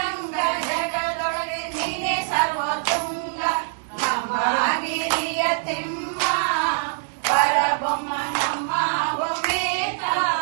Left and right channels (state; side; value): silent; left; digital silence